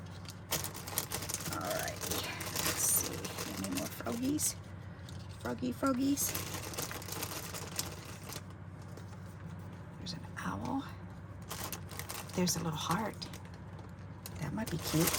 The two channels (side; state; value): both; identical; correlation 1.00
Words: All right, let's see. Any more froggies? Froggies. There's an owl. There's a little heart. That might be cute.